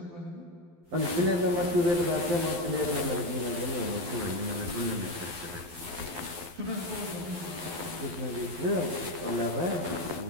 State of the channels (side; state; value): left; late; 12 ms